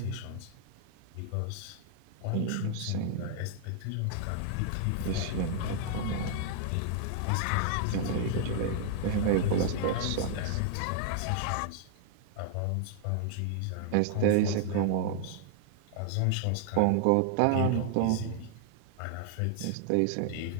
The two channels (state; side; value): different; both; correlation -0.01